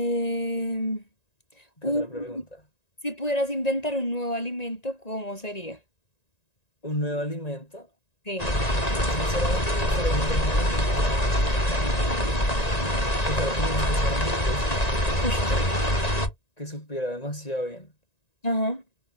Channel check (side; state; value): right; late; 1.9 ms